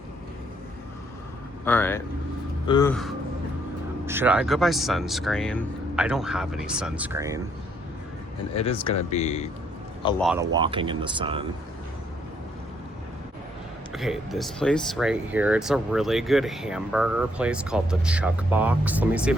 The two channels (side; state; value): both; normal; correlation 0.70